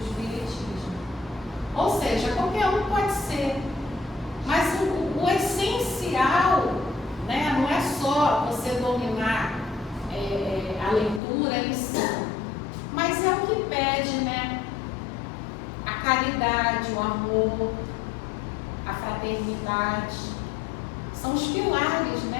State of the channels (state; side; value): drops out; right; at 11.2 s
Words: Espiritismo. Ou seja, qualquer um pode ser, mas o essencial, né, não é só você dominar a leitura em si, mas é o que pede, né? A caridade, o amor, a fraternidade, são os pilares,